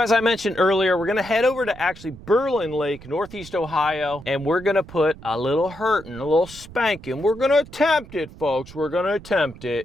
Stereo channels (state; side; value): noise; right; rumble, 18 dB below the sound